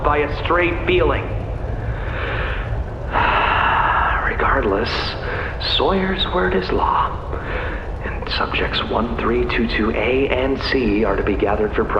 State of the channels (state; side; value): identical; both; correlation 1.00